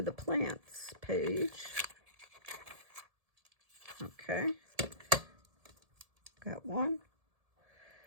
the plants page. Okay, got one.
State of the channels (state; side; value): late; left; 1.7 ms